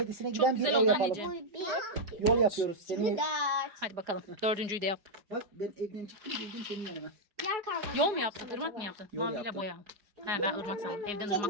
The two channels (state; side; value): late; left; 4.9 ms